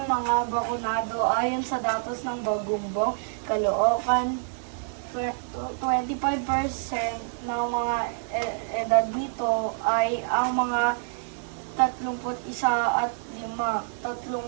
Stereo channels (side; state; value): left; silent; digital silence